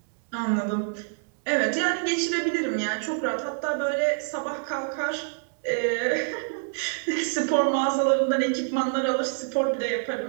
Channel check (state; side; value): silent; left; digital silence